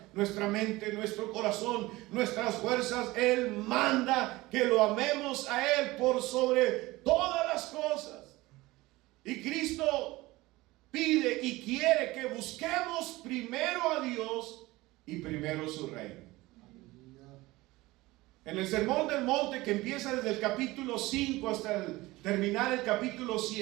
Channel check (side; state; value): left; quieter; 19.9 dB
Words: nuestra mente, nuestro corazón, nuestras fuerzas. Él manda que lo amemos a Él por sobre todas las cosas. Y Cristo pide y quiere que busquemos primero a Dios y primero su reino. En el Sermón del Monte, que empieza desde el capítulo 5 hasta terminar el capítulo